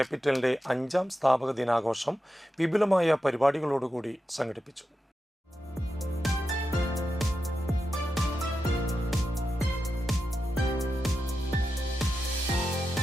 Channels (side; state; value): both; normal; correlation 0.90